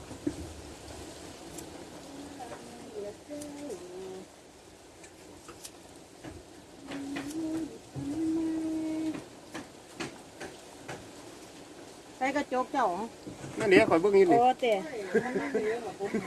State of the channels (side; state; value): both; identical; correlation 1.00